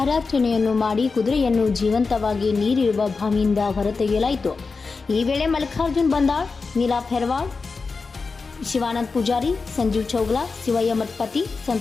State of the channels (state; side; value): quieter; right; 4.4 dB